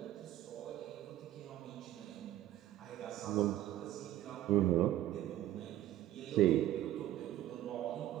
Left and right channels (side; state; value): left; quieter; 13.6 dB